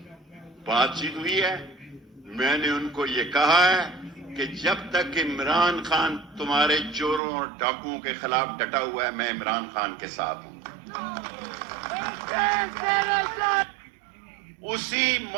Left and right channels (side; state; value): left; drops out; at 7.2 s